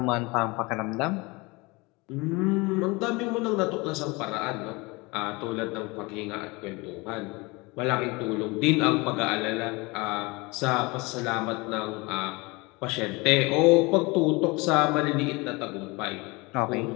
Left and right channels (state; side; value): quieter; right; 25.2 dB